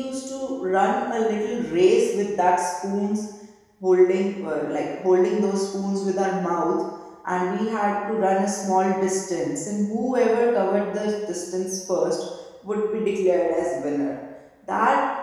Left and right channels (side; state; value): both; identical; correlation 1.00